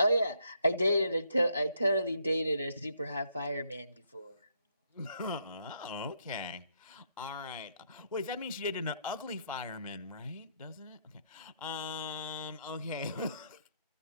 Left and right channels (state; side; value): inverted; both; correlation -0.73